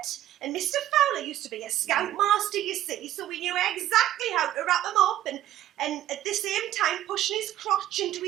and Mr. Fowler used to be a scoutmaster, you see, so we knew exactly how to wrap him up, and at the same time pushing his crotch into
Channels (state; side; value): quieter; left; 12.9 dB